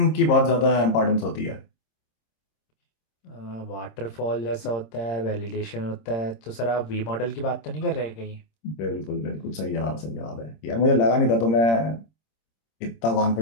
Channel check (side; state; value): right; late; 26 ms